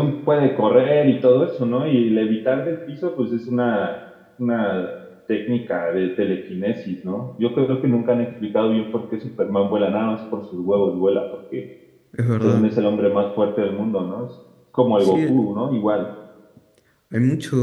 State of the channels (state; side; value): identical; both; correlation 1.00